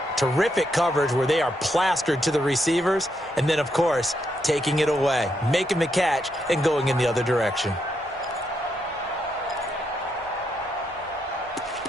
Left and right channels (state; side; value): normal; both; correlation 0.79